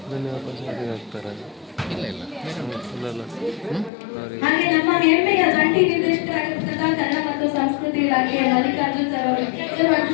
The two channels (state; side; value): drops out; right; at 3.9 s